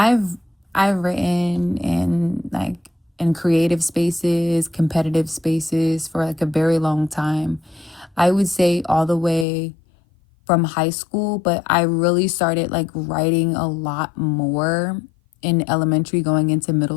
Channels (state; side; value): drops out; right; at 9.5 s